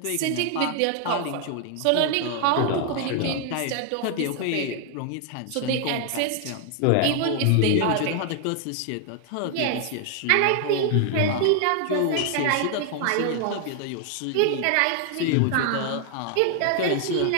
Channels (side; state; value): both; different; correlation 0.00